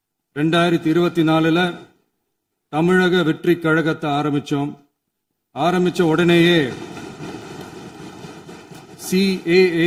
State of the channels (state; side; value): identical; both; correlation 1.00